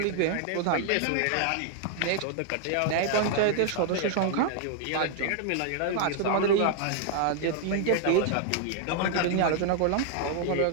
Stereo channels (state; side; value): different; both; correlation 0.00